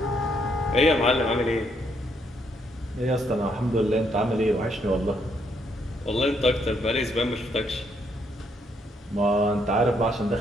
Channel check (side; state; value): both; normal; correlation 0.73